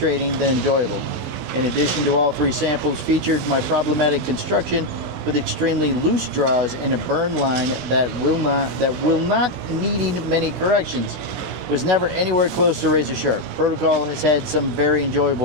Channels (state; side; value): late; left; 16 ms